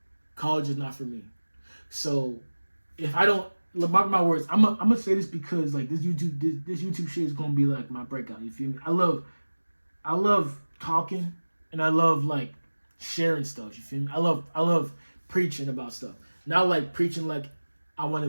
College is not for me. So if I don't, mark my words, I'm gonna say this because this YouTube shit is gonna be my breakout, you feel me? I love talking, and I love sharing stuff, you feel me? I love preaching about stuff. Not preaching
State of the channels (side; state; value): both; inverted; correlation -1.00